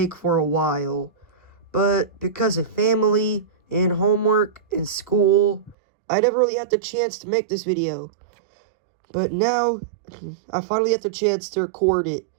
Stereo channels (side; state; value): left; drops out; at 5.8 s